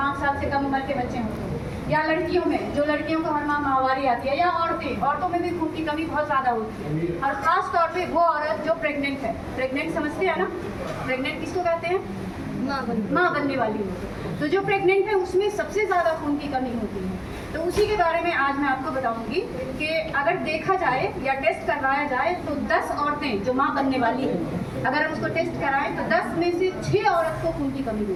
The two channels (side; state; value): both; identical; correlation 1.00